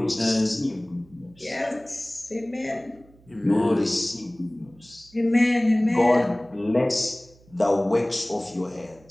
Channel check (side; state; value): right; noise; hum, 27 dB below the sound